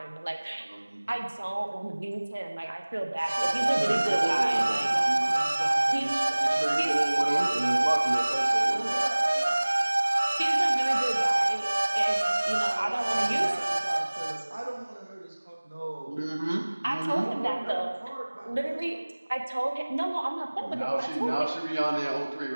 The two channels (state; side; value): inverted; both; correlation -1.00